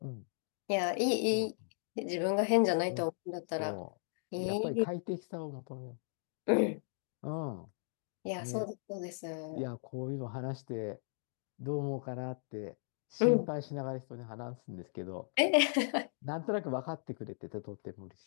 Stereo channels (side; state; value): right; silent; digital silence